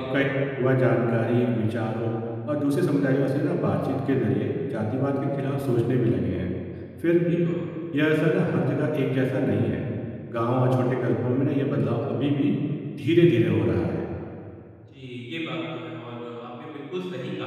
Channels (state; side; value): identical; both; correlation 1.00